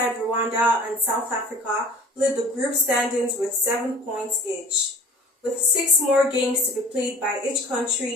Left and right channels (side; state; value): both; normal; correlation 0.45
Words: Rwanda and South Africa lead the group standings with 7 points each. With 6 more games to be played by each